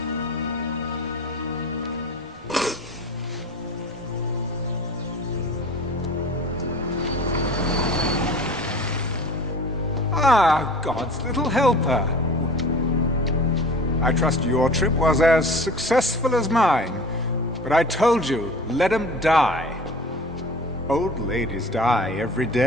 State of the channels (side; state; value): both; normal; correlation 0.41